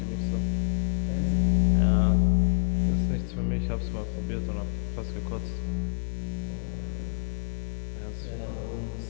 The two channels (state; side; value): silent; right; digital silence